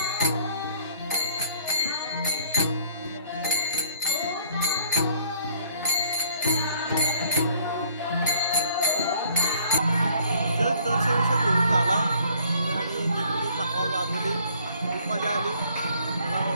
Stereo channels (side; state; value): both; inverted; correlation -0.60